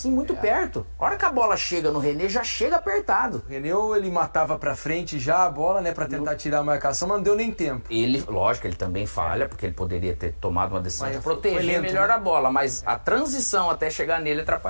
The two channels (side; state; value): both; inverted; correlation -1.00